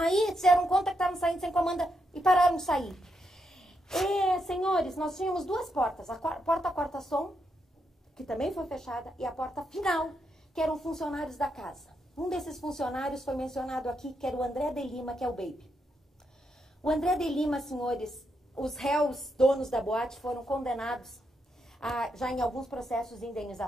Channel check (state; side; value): normal; both; correlation 0.81